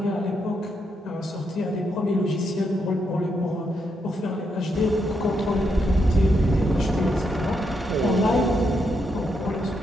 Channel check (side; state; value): both; normal; correlation 0.80